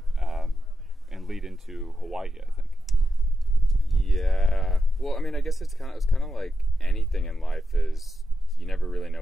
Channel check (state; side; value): normal; both; correlation 0.88